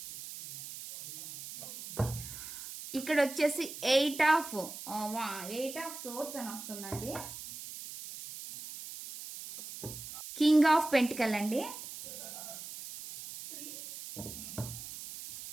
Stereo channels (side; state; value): right; noise; hiss, 11 dB below the sound